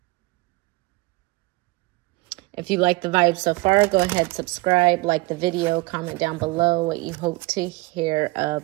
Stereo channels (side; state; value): left; quieter; 23.0 dB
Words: you like the vibe so far, go ahead, subscribe, like the video, comment down below what you hope to hear